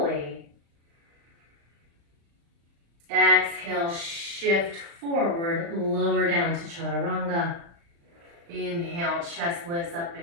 Exhale, shift forward, lower down to chaturanga. Inhale, chest lifts up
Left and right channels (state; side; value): late; left; 35 ms